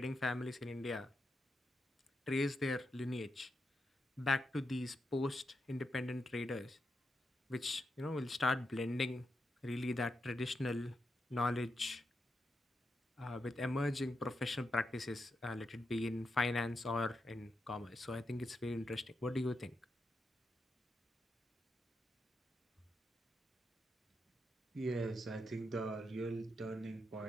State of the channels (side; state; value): both; normal; correlation 0.85